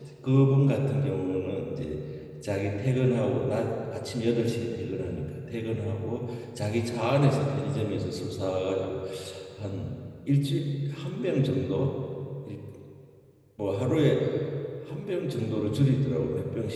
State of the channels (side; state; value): both; identical; correlation 1.00